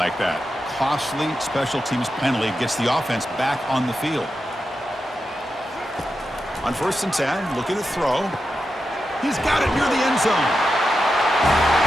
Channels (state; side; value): normal; both; correlation 0.89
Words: that. Costly special teams penalty gets the offense back on the field. On 1st and 10, looking to throw. He's got it near the end zone.